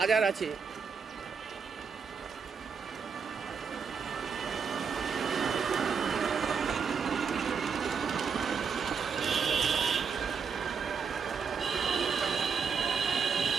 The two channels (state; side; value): quieter; left; 6.0 dB